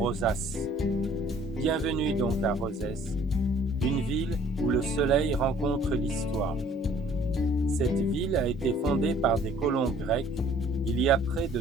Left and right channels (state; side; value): normal; both; correlation 0.56